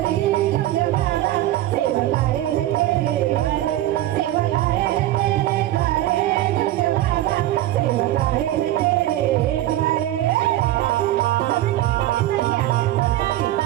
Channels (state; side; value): quieter; left; 14.5 dB